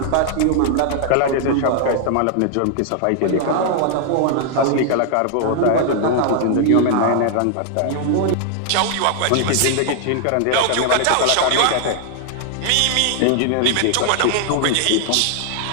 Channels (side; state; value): both; different; correlation 0.00